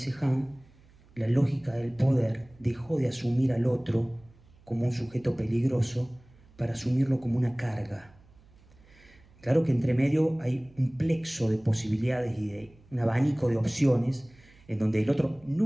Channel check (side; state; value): right; noise; hum, 27 dB below the sound